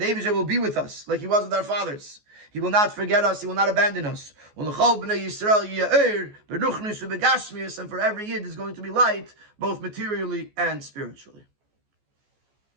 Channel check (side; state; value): left; late; 14 ms